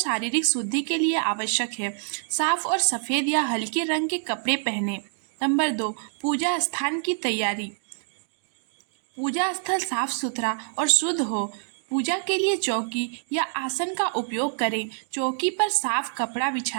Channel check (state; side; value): silent; left; 61 dB below the other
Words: शुद्धि के लिए आवश्यक है। साफ और सफेद या हल्के रंग के कपड़े पहने। नंबर 2, पूजा स्थान की तैयारी। पूजा स्थल साफ सुथरा और शुद्ध हो। पूजा के लिए चौकी या आसन का उपयोग करें। चौकी पर साफ कपड़ा